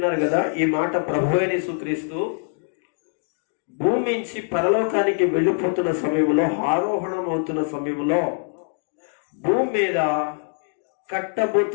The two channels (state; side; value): silent; right; digital silence